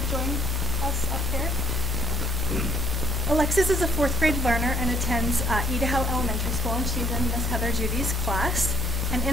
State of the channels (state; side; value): normal; both; correlation 0.64